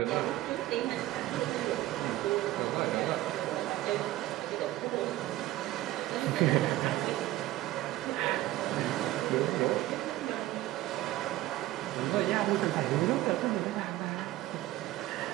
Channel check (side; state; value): left; quieter; 16.0 dB